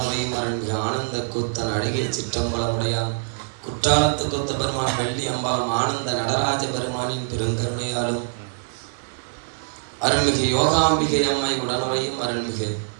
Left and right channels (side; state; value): left; silent; digital silence